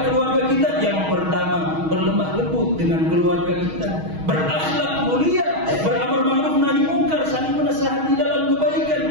keluarga kita? Yang pertama, berlemah lembut dengan keluarga kita, berakhlak mulia, beramar ma'ruf nahi mungkar, saling menasihati dalam kebaikan.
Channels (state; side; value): late; left; 6.3 ms